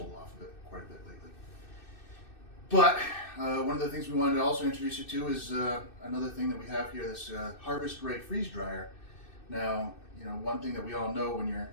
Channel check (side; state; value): right; late; 2.6 ms